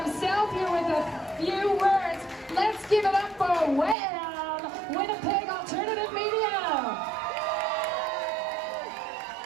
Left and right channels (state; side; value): drops out; left; at 4.0 s